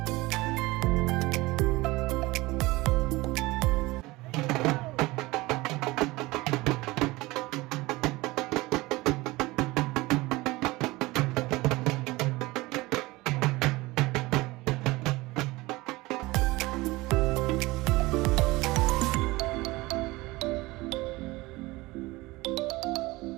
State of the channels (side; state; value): left; quieter; 21.0 dB